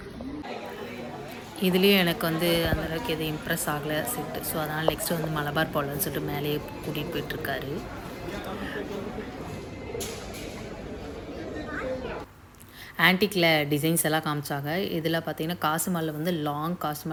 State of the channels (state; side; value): identical; both; correlation 1.00